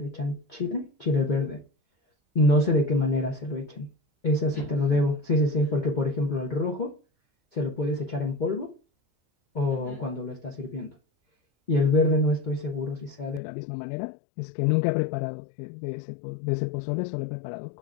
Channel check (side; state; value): right; drops out; at 13.4 s